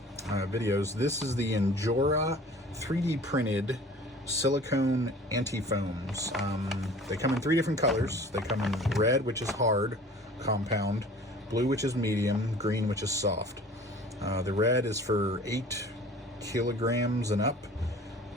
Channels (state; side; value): normal; both; correlation 0.46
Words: This is the Injora 3D printed silicone anti foams. They come in three different colors. They come in red, which is hard, compound, blue, which is medium, green, which is soft. The red is for 8 kilograms and up.